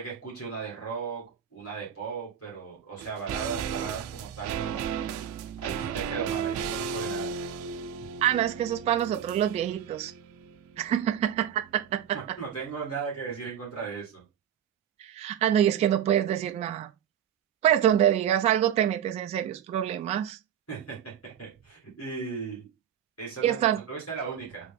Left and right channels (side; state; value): left; quieter; 9.5 dB